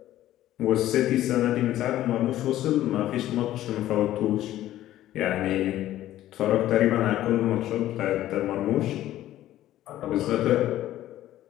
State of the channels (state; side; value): quieter; right; 13.7 dB